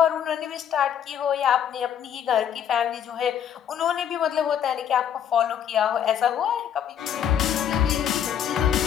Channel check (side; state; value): right; quieter; 9.2 dB